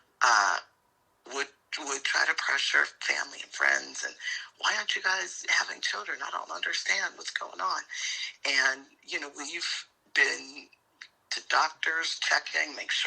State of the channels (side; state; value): both; identical; correlation 1.00